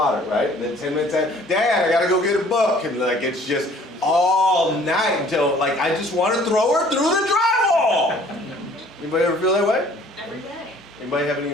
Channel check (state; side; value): normal; both; correlation 0.55